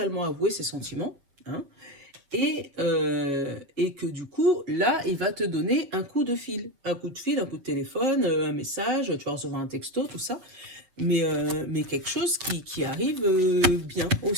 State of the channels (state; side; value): late; left; 7.7 ms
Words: avouer ses sentiments, hein, et que du coup, là, il va te donner un coup de fil. Un coup de fil, un coup de téléphone, un message, tu vas recevoir un texto, tout ça. Mais quelque chose qui arrive bien